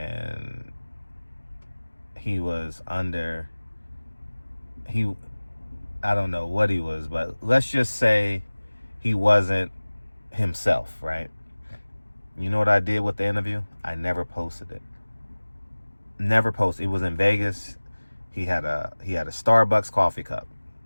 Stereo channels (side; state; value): both; inverted; correlation -1.00